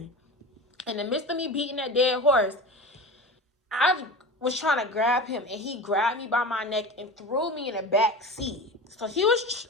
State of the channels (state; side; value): normal; both; correlation 0.30